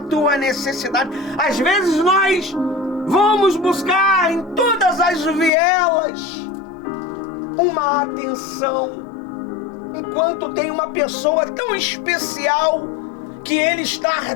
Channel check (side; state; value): right; drops out; at 5.5 s